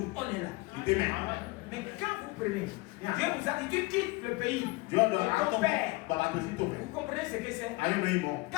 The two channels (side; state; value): right; quieter; 23.3 dB